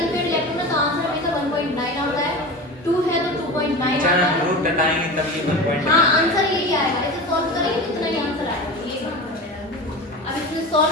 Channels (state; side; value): normal; both; correlation 0.30